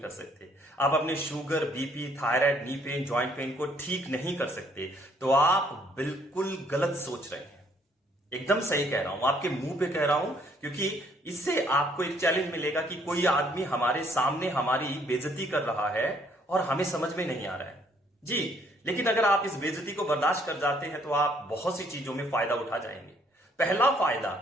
कर सकते, आप अपने sugar, BP, thyroid, knee pain, joint pain को ठीक नहीं कर सकते, तो आप बिल्कुल गलत सोच रहे हैं। एकदम सही कह रहा हूं, आपके मुंह पे कह रहा हूं, क्योंकि इससे आपको एक चैलेंज मिलेगा कि कोई आदमी हमारे सामने हमारी बेइज्जती कर रहा है और हमें समझ में नहीं आ रहा है जी। लेकिन अगर आप इस बेइज्जती को बर्दाश्त कर जाते हैं तो आप बहुत सी चीजों में फायदा उठा जाएंगे। पहला फायदा,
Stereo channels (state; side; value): normal; both; correlation 0.65